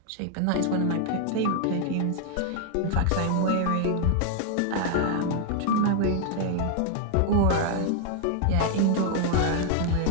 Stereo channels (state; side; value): different; both; correlation 0.00